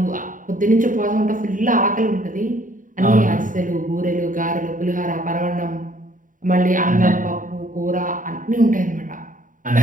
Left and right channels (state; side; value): late; left; 0.38 ms